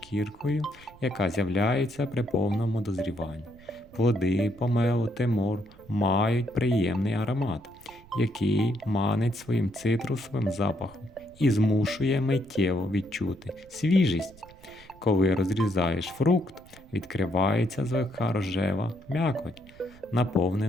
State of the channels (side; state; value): right; noise; rumble, 24 dB below the sound